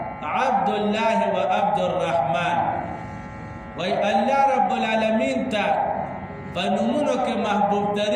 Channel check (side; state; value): both; identical; correlation 1.00